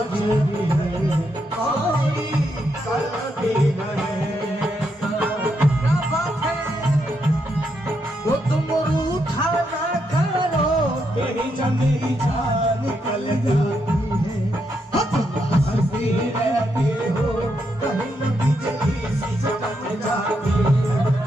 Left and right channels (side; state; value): both; normal; correlation 0.80